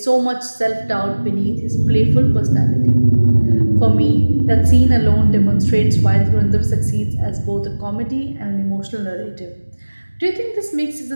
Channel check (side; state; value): both; inverted; correlation -1.00